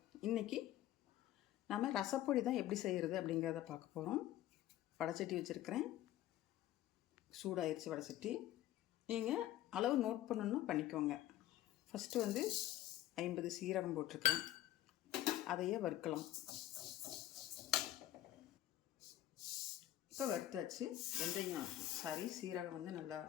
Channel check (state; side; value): quieter; right; 13.6 dB